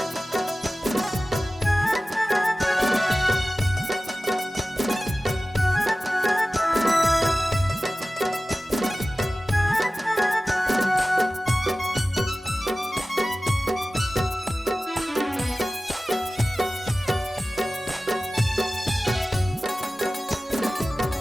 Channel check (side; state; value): both; normal; correlation 0.96